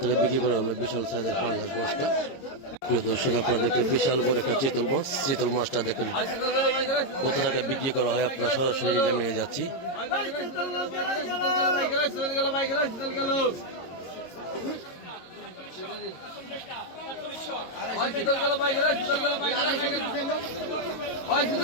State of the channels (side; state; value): right; late; 22 ms